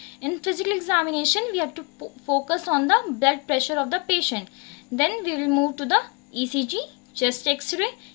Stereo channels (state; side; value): quieter; right; 31.3 dB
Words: In physical examination, we have to focus on the blood pressure of the patient. Then we will move to the ECG, chest X-ray,